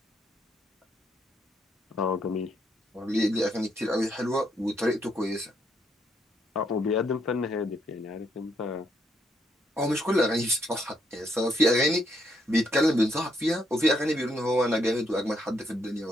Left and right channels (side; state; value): both; normal; correlation 0.74